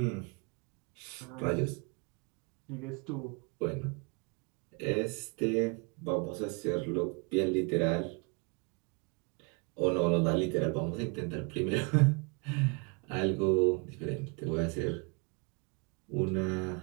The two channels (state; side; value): quieter; left; 33.3 dB